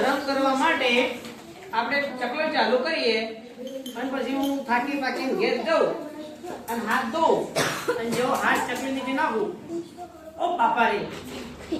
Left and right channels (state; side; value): identical; both; correlation 1.00